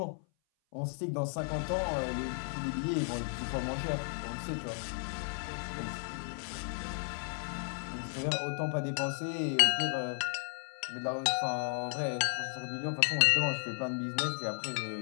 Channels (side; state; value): right; silent; 55 dB below the other